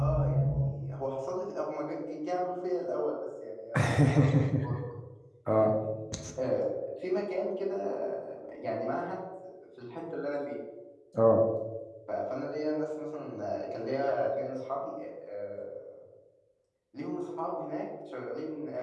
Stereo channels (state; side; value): identical; both; correlation 1.00